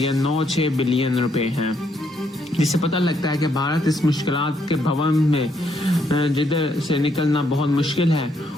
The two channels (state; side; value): normal; both; correlation 0.73